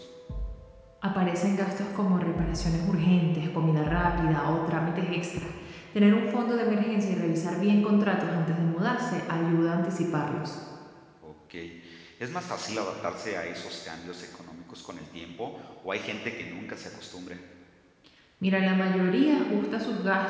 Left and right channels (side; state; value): both; identical; correlation 1.00